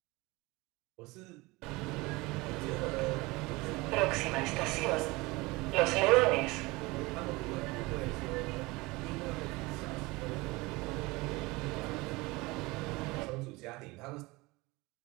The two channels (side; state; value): left; quieter; 22.9 dB